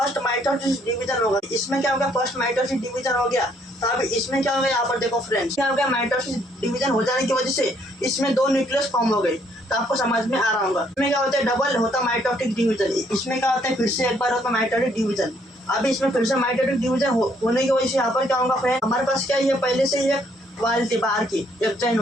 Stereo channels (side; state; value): both; normal; correlation 0.67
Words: माइटोसिस डिवीजन होगा। इसमें क्या होगा, फर्स्ट माइटोसिस डिवीजन हो गया। तो अभी इसमें क्या होगा, यहाँ पर देखो फ्रेंड्स, क्या हो गया, माइटोसिस डिवीजन हो जाने की वजह से इसमें 2 न्यूक्लियस फॉर्म हो गए। तो आपको समझ में आ रहा होगा। इसमें क्या होता है, डबल होता माइटोटिक डिवीजन। इसमें क्या होता है, फिर से एक बार होता माइटोटिक डिवीजन। अभी इसमें फिर से माइटोटिक डिवीजन होने की वजह से यहाँ पर क्या होगा फ्रेंड, हमारे पास क्या है, पहले से ये वाल थी बाहर की, एक्जाइन